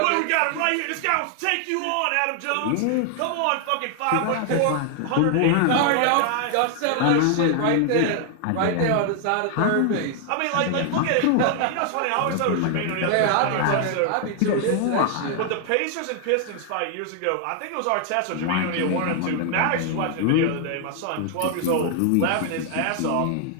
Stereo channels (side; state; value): both; different; correlation 0.00